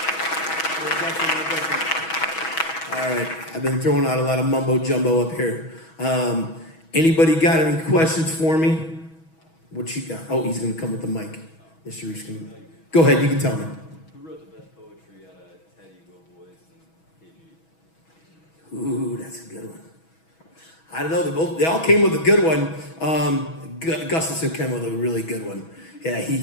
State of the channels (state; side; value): late; right; 6.2 ms